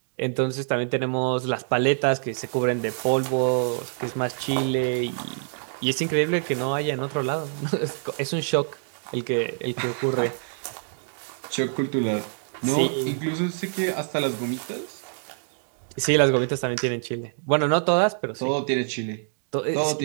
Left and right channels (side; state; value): left; silent; digital silence